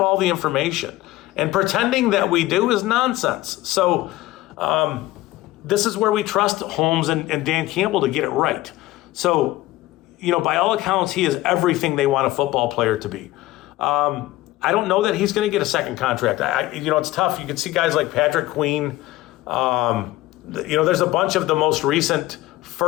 all the information. And pretending that we do is nonsense. So this is where we trust Holmes and Dan Campbell to get it right. So, by all accounts, he is everything they want a football player to be. I don't know that he's going to get a second contract. It's tough. You can see guys like Patrick Queen. There's a bunch of the most recent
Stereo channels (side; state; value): right; quieter; 17.2 dB